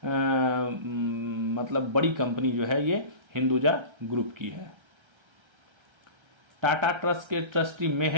मतलब बड़ी कंपनी जो है ये हिंदुजा ग्रुप की है। टाटा ट्रस्ट के ट्रस्टी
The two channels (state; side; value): late; left; 1.3 ms